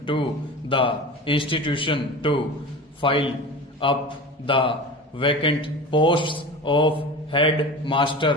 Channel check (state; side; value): normal; both; correlation 0.32